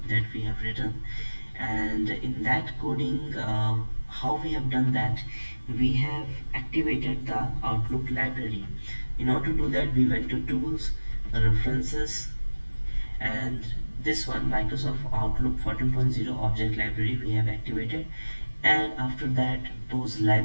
that we have written. And in that coding, how we have done that, we have activated the Outlook library. In order to do that, we went to tools, references, and this one, Microsoft Outlook 14.0 object library, we have activated. And after that, those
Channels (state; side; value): inverted; both; correlation -1.00